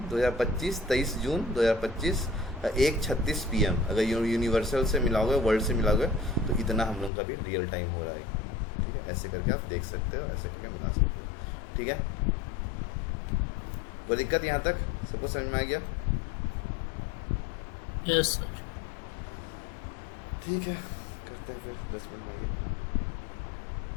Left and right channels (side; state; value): right; drops out; at 7.1 s